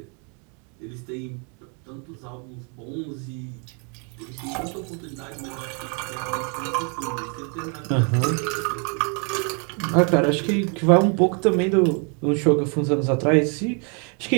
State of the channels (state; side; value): quieter; left; 37.3 dB